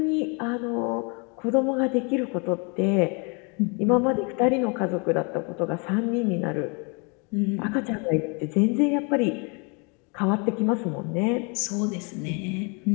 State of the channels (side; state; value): right; quieter; 32.9 dB